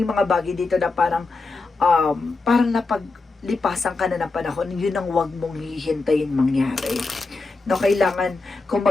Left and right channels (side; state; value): right; quieter; 3.7 dB